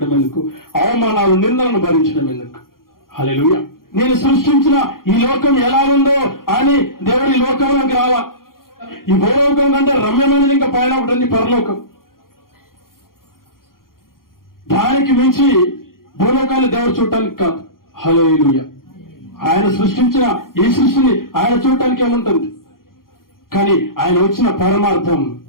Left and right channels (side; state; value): right; late; 0.92 ms